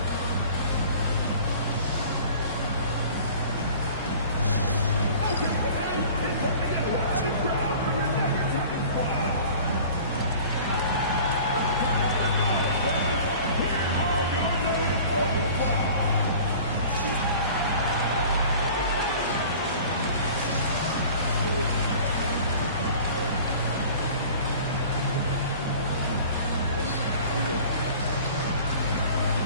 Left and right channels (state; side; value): inverted; both; correlation -0.44